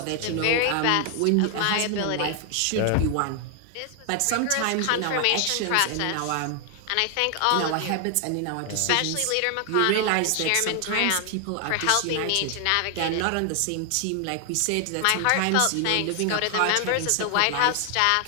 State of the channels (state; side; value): different; both; correlation 0.00